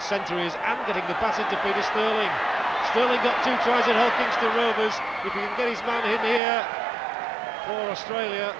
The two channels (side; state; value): left; drops out; at 6.4 s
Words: centre he is and getting the pass into Peter Sterling. Sterling got 2 tries at Hull Kingston Rovers. If he can get his man in here for Australia,